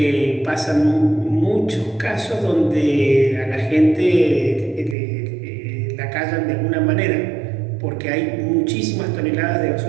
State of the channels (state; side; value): drops out; left; at 5.0 s